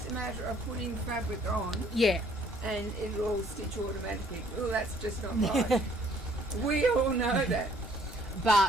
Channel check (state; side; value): normal; both; correlation 0.61